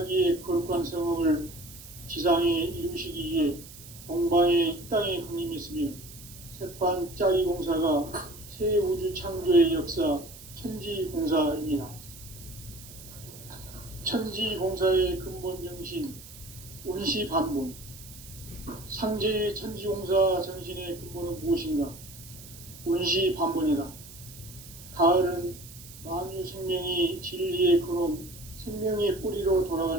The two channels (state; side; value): noise; right; hiss, 17 dB below the sound